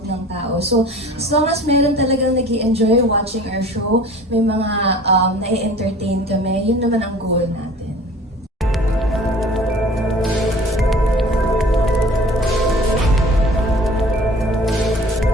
ng tao. So, as long as meron talagang nag-i-enjoy watching our show, may mga na-entertain kami, yun naman ang goal natin.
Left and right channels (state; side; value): normal; both; correlation 0.45